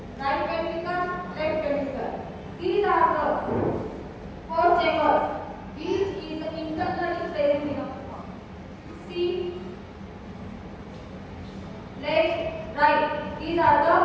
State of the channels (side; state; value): both; identical; correlation 1.00